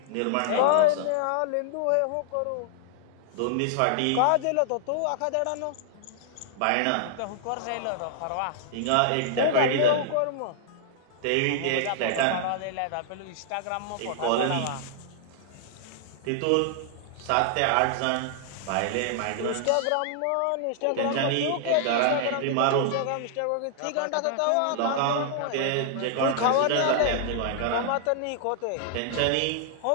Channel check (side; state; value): both; different; correlation -0.01